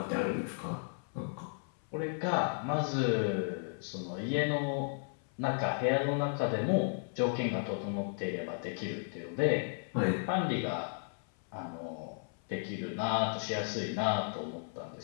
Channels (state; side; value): silent; right; 55 dB below the other